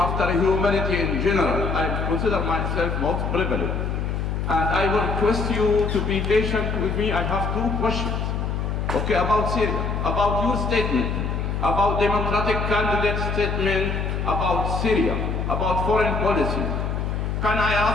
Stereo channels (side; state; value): left; noise; hum, 1 dB below the sound